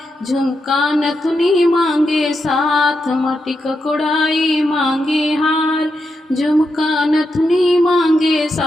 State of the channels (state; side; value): normal; both; correlation 0.85